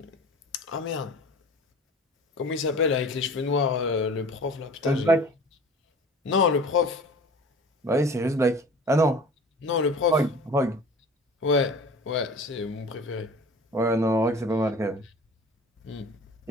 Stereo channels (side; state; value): both; normal; correlation 0.42